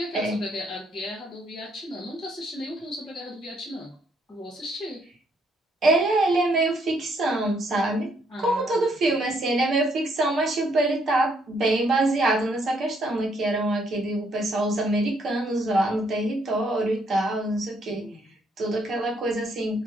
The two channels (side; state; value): both; normal; correlation 0.70